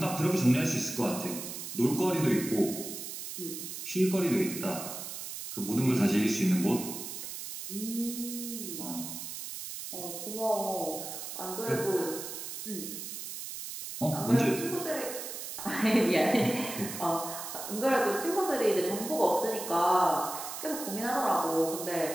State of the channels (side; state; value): right; noise; hiss, 8 dB below the sound